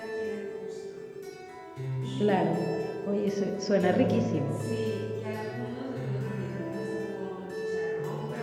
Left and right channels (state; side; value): identical; both; correlation 1.00